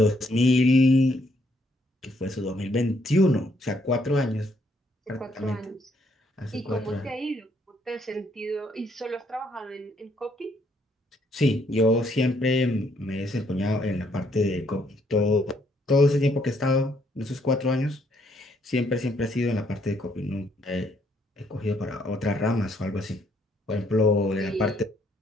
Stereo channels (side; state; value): both; normal; correlation 0.70